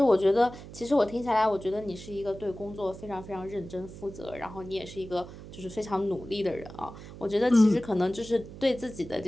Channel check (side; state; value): right; noise; hum, 14 dB below the sound